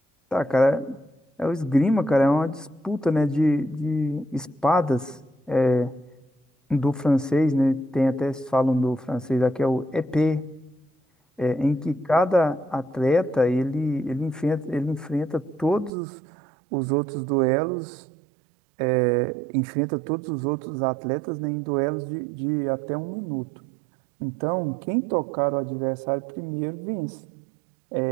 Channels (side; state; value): left; drops out; at 15.9 s